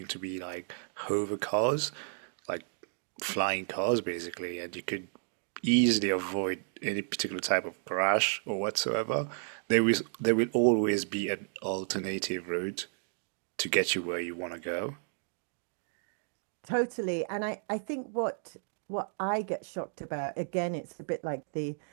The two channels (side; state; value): left; silent; digital silence